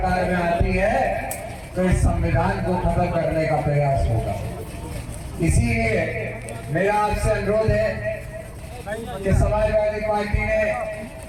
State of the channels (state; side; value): identical; both; correlation 1.00